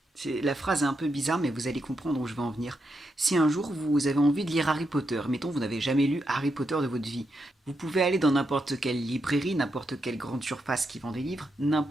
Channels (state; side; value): normal; both; correlation 0.83